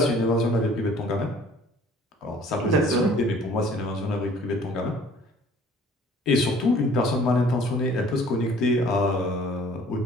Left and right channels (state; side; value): normal; both; correlation 0.53